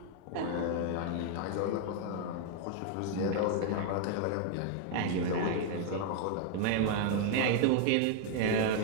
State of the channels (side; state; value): both; different; correlation 0.00